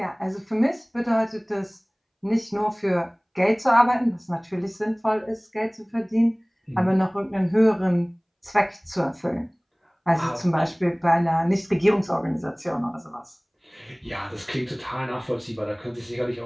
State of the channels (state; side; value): identical; both; correlation 1.00